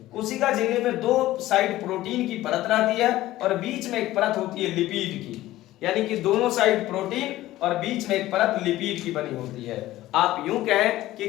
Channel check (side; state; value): right; quieter; 15.8 dB